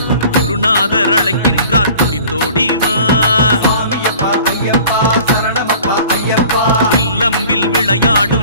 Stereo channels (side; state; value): both; inverted; correlation -0.46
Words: குருநாதர் அழைக்கின்றார் துடித்தோடிவா இல்லம்பில்